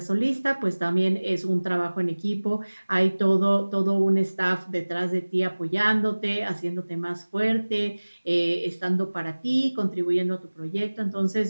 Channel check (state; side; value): inverted; both; correlation -1.00